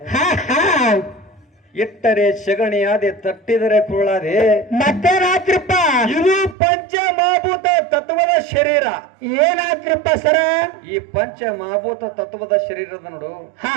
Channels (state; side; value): drops out; left; at 6.6 s